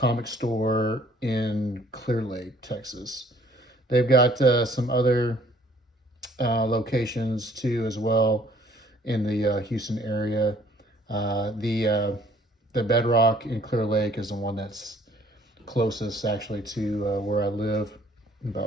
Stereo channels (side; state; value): both; normal; correlation 0.59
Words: store in Clear Lake, Texas. They've got some other locations too as well in the Houston area. The Bedrock in Clear Lake is the one that's closest actually to where I live,